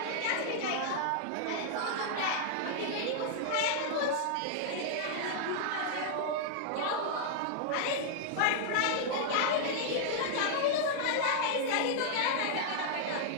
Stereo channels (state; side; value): different; both; correlation -0.01